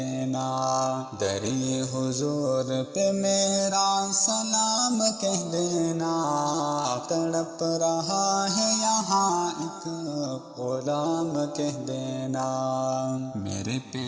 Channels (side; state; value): both; identical; correlation 1.00